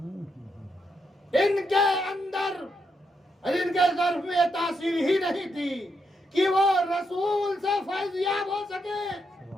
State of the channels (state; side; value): normal; both; correlation 0.81